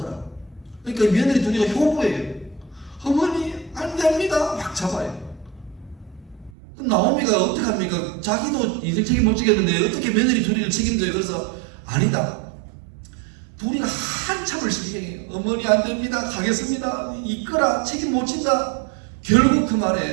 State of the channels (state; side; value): drops out; left; at 6.5 s